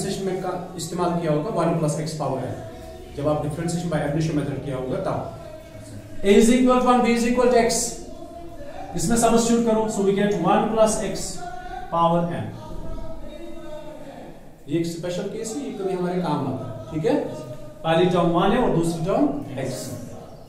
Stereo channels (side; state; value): both; identical; correlation 1.00